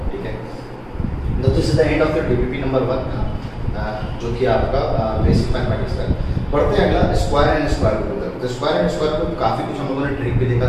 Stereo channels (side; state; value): both; identical; correlation 1.00